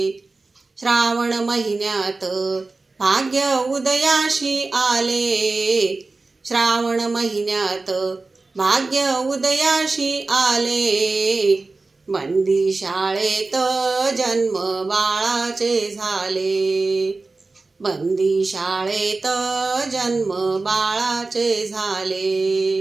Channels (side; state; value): left; quieter; 3.6 dB